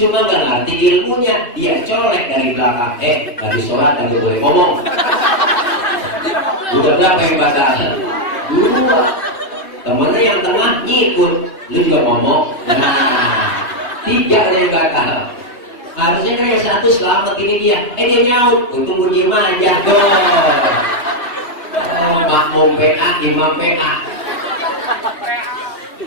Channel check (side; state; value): right; late; 3.3 ms